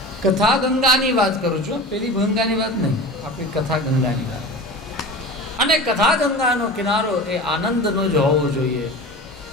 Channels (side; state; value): both; normal; correlation 0.33